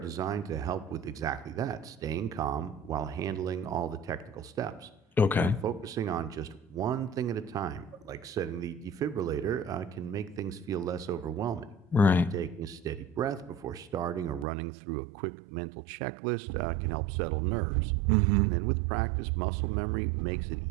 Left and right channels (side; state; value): left; drops out; at 14.5 s